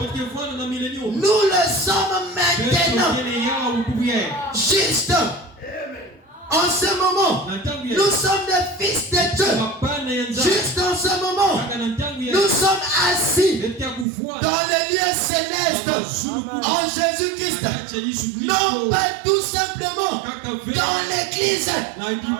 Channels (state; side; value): drops out; left; at 14.1 s